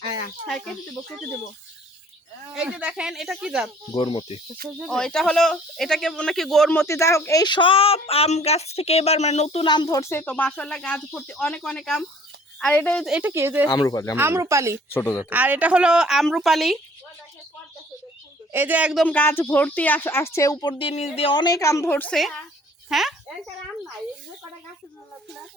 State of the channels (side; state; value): both; normal; correlation 0.55